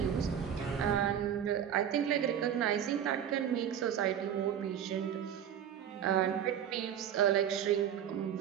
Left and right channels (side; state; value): left; quieter; 9.3 dB